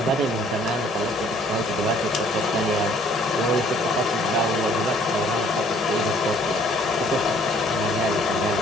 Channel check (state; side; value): normal; both; correlation 0.59